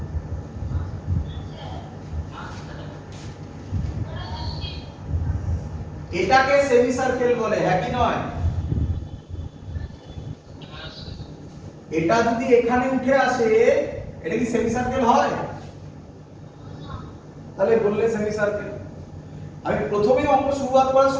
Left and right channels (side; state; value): both; identical; correlation 1.00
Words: এটাকে সেমি সার্কেল বলে, হ্যাঁ কি নয়? এটা যদি এখানে উঠে আসে, এটা কি সেমি সার্কেল হয়? তাহলে বললে সেমি সার্কেল। আমি প্রথমেই অঙ্ক শুরুয়াত করার